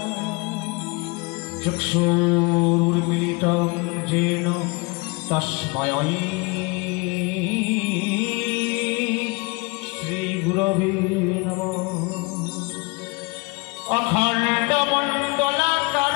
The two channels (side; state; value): right; quieter; 28.3 dB